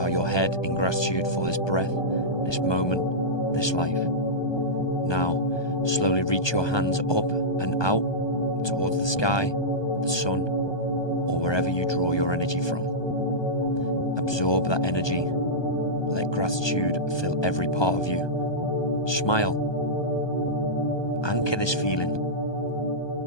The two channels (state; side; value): late; right; 1.2 ms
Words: your head in gratitude for this breath, this moment, this life. Now, slowly reach your hands up and out towards the sky, the sun, or wherever you draw your energy from. Absorb that energy. Let gratitude fill every part of you. Smile. Anchor this feeling.